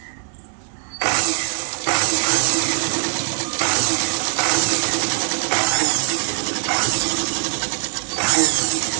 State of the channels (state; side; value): silent; left; digital silence